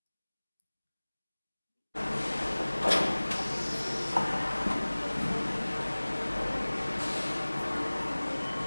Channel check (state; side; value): inverted; both; correlation -1.00